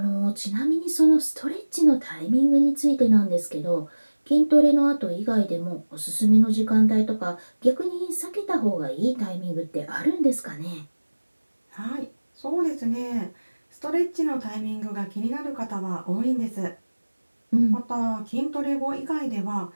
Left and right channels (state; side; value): inverted; both; correlation -1.00